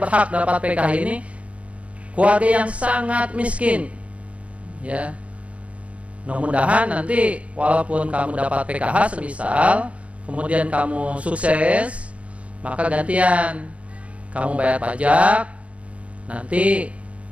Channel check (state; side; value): late; left; 0.063 ms